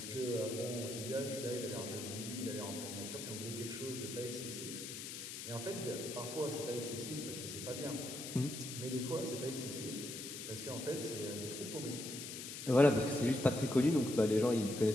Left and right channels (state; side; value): noise; left; hiss, 8 dB below the sound